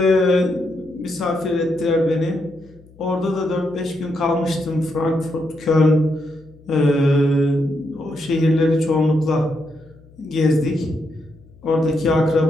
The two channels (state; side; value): noise; left; hum, 25 dB below the sound